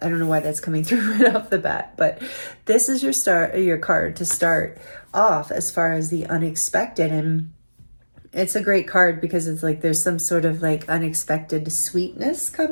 I don't know why that's coming through right off the bat, but this is your card to start off as far as the unexpected. And it's a great card because it's like there's some sort of like unexpected sweetness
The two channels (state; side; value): inverted; both; correlation -1.00